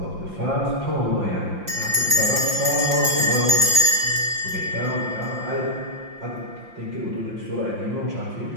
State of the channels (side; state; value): left; late; 5.7 ms